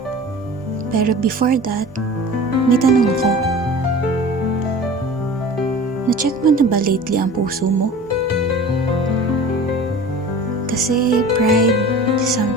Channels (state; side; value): normal; both; correlation 0.39